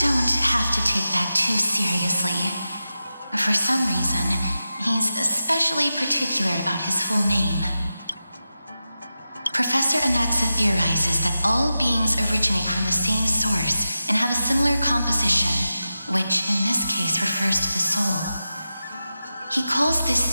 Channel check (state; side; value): inverted; both; correlation -0.92